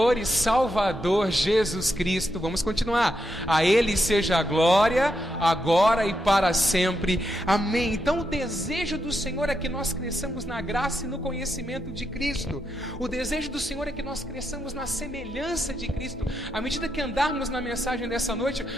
e Salvador Jesus Cristo. Vamos continuar. A Ele seja a glória, agora e para sempre. Amém. Então o desejo do Senhor é que nós cresçamos na graça e no conhecimento de Cristo. O desejo do Senhor é que nós cresçamos na semelhança de Cristo. À medida que andarmos na mensagem dessa noite,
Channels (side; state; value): both; normal; correlation 0.83